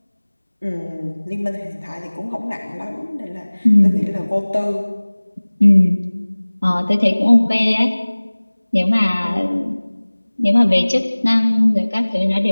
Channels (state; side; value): inverted; both; correlation -1.00